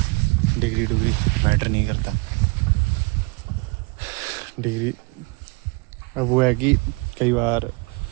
डिग्री मैटर नहीं करता। डिग्री अब वो है कि कई बार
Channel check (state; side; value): quieter; left; 27.6 dB